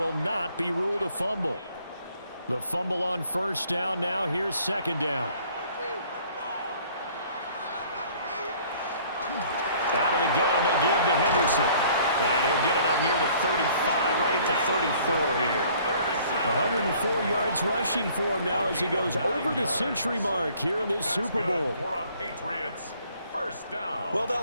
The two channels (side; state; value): both; inverted; correlation -0.57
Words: not be ruled a fumble. The fumble on first down now. Here's second down. Out of the gun, they give to Henderson. And he'll get it up near the 35, right at the 34 here. 104 yards rushing for him now as he goes over the century mark here in this Super Bowl. Patriots. First down. Well,